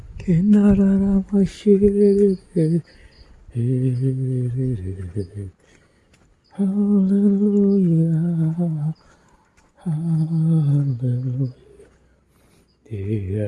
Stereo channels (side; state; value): both; identical; correlation 1.00